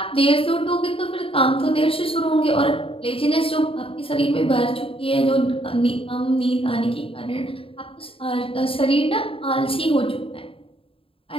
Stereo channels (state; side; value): late; right; 0.27 ms